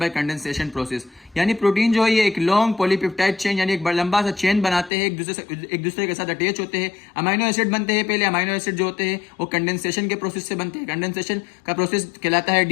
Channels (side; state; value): right; drops out; at 4.9 s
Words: condensation process. यानी प्रोटीन जो है ये एक लॉन्ग पॉलीपेप्टाइड चेन यानी एक बड़ा लंबा सा चेन बनाते हैं, एक दूसरे के साथ अटैच होते हैं। अमाइनो एसिड बनते हैं, पहले अमाइनो एसिड जो होते हैं वो कंडेंसेशन के प्रोसेस से बनते हैं। कंडेंसेशन का प्रोसेस कहलाता है